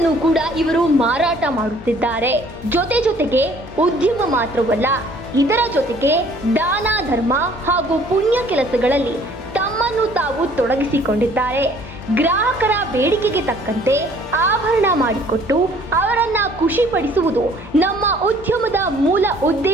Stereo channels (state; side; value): normal; both; correlation 0.57